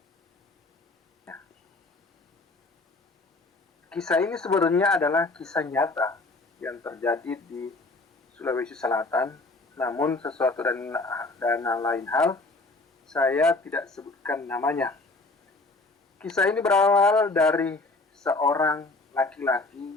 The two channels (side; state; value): right; quieter; 3.2 dB